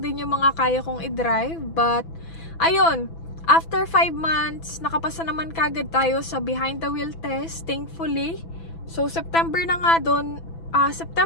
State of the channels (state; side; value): late; right; 6.0 ms